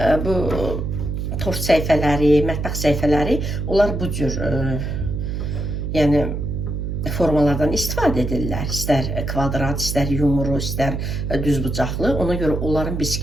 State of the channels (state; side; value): noise; right; hum, 3 dB below the sound